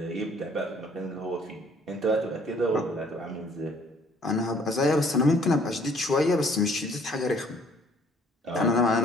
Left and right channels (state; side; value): normal; both; correlation 0.59